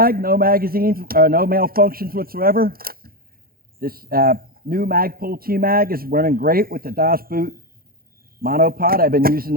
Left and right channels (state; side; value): late; left; 0.43 ms